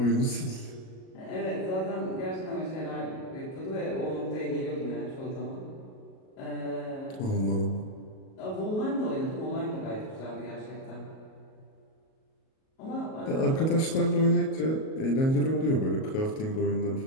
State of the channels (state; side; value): late; right; 37 ms